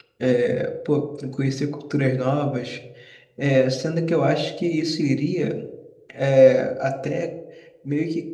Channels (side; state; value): both; identical; correlation 1.00